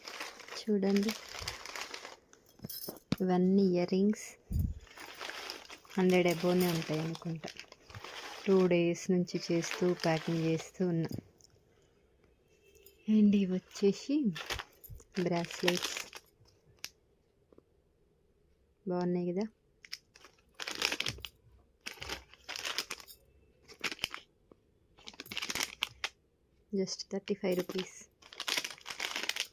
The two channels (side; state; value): both; identical; correlation 1.00